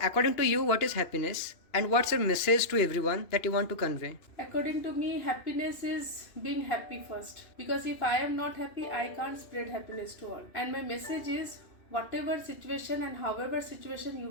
according to you, what is happiness and what's your message to everyone that you want to convey? According to me, happiness is being happy first. Because if I am not happy, I can't spread happiness to all. And my message is, whatever situation and however situation you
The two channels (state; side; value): late; right; 2.9 ms